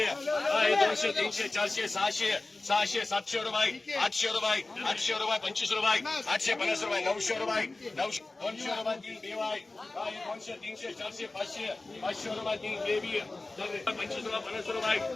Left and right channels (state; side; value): quieter; right; 3.2 dB